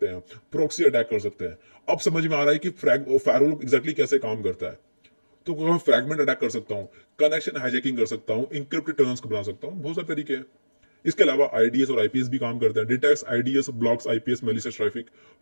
हैं, प्रॉक्सी अटैक कर सकते हैं। अब समझ में आ रहा है कि फायरवॉल एग्जैक्टली कैसे काम करता है। तो मैं फ्रैगमेंट अटैक कर सकता हूँ, कनेक्शन हाईजैकिंग कर सकता हूँ, इंक्रिप्टेड टर्न्स को बना सकता हूँ, बहुत सारे तरीके हैं। इसके अलावा आईडीएस और आईपीएस भी काम करते हैं। Detects IDS, blocks IPS, malicious traffic,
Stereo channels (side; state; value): both; inverted; correlation -1.00